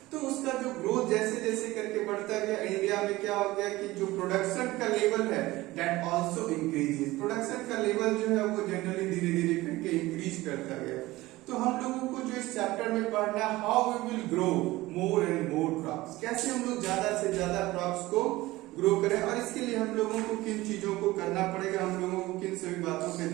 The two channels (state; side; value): quieter; left; 18.7 dB